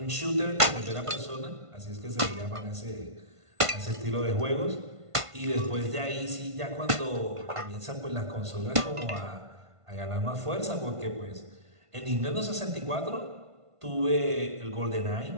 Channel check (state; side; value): late; left; 1.5 ms